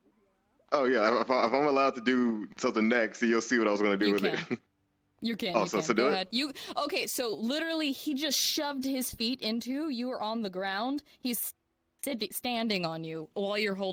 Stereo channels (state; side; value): identical; both; correlation 1.00